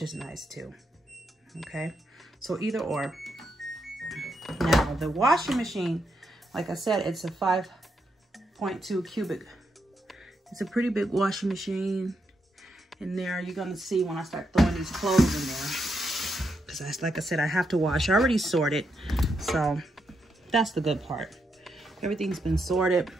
is nice too. Okay, so either or. Now the washing machine, like I said, it's a 5.2 cubic. It's a pretty big washing machine in there. You're gonna see when I start throwing these clothes in there. Because like I said, I have to wash. I already sorted, so that's the good part. Everything's been sorted,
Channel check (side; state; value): both; normal; correlation 0.81